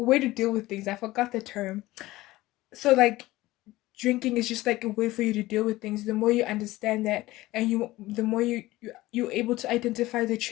way to deal with things? I forgot the term. So like drinking is just like a way for you to deal with things. The more you understand that, and the more you're able to identify the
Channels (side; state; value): right; quieter; 18.0 dB